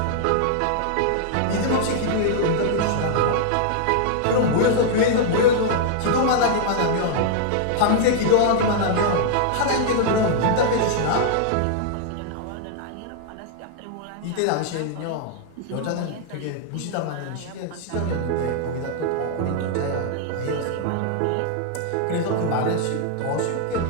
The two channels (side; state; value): both; different; correlation -0.01